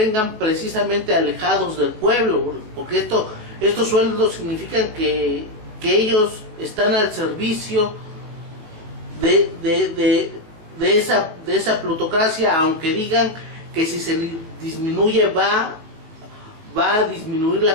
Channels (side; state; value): left; late; 19 ms